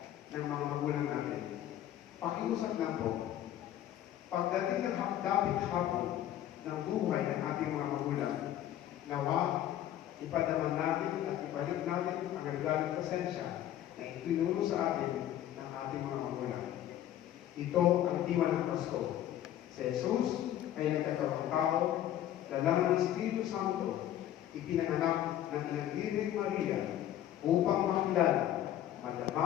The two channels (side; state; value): right; quieter; 12.0 dB